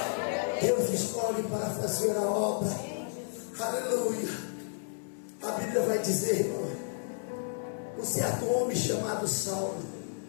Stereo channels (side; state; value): right; silent; digital silence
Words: Deus escolhe para fazer a obra, aleluia. A Bíblia vai dizer, irmão, um certo homem chamado Saulo,